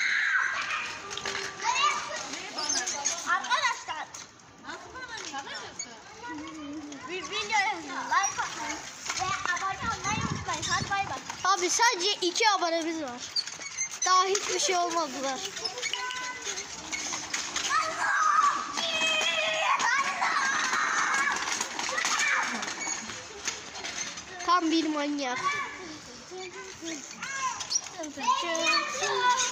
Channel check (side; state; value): both; identical; correlation 1.00